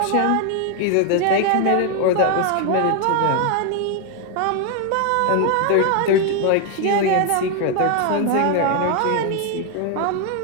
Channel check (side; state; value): both; different; correlation 0.00